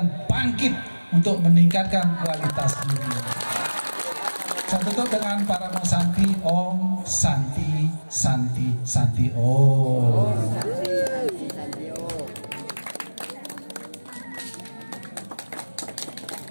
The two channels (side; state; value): both; inverted; correlation -1.00